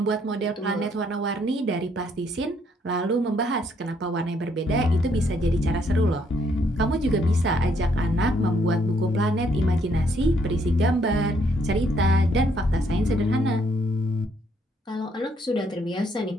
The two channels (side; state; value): both; normal; correlation 0.69